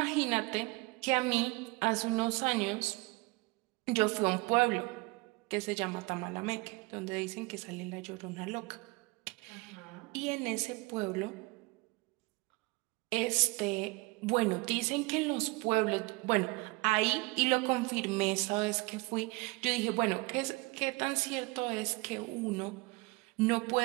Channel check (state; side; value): quieter; left; 25.6 dB